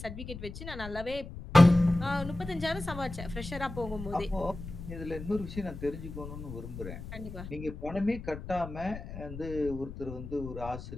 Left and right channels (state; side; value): noise; left; rumble, 10 dB below the sound